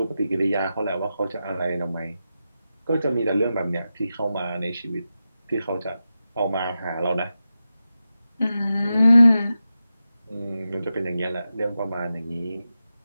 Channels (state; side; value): inverted; both; correlation -0.91